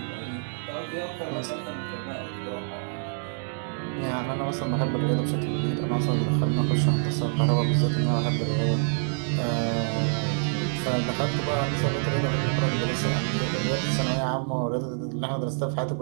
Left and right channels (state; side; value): silent; left; digital silence